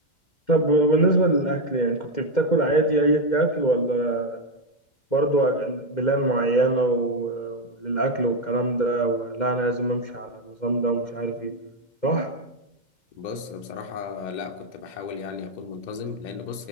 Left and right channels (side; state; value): right; late; 2.1 ms